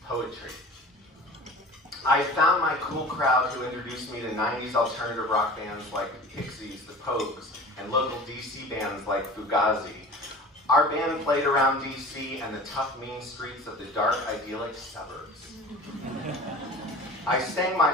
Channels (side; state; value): both; normal; correlation 0.40